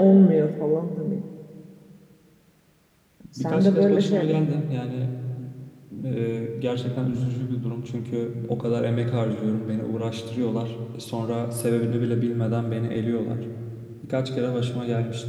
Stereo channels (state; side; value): identical; both; correlation 1.00